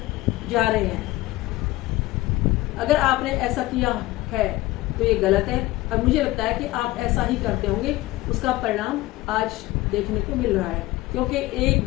जा रहे हैं? अगर आपने ऐसा किया है तो ये गलत है और मुझे लगता है कि आप ऐसा ही करते होंगे। उसका परिणाम आज देखने को मिल रहा है, क्योंकि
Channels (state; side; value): quieter; right; 18.4 dB